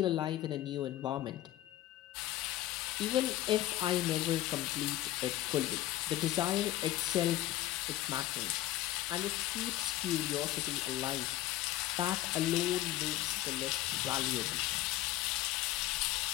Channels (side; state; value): right; quieter; 14.9 dB